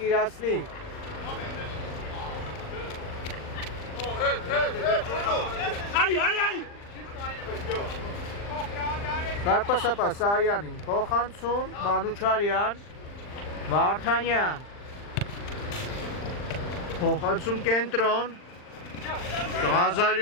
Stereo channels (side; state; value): right; late; 39 ms